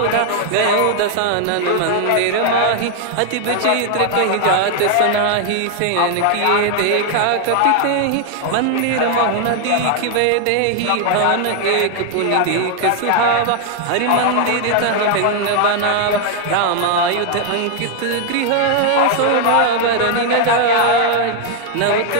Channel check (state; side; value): different; both; correlation 0.00